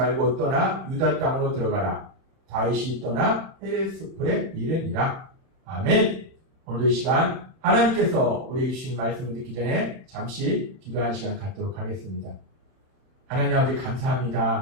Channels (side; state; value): left; late; 31 ms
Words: 떠나 유다 땅으로 들어가라. 다윗이 떠나 헤레스풀에 이르니라. 아멘. 오늘도 이 시간 하나님께서 우리에게 주신 말씀을 듣기 전에 잠시 기도하는 시간 갖도록 하겠습니다. 하나님 아버지